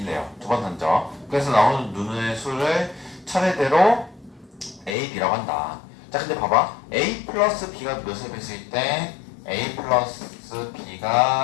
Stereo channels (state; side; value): drops out; right; at 5.0 s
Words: 두 번 던져. 그래서 나오는 눈의 수를 차례대로 A, B라고 한다. 자 근데 봐봐. A 플러스 B가 몇의 배수일 때 A 플러스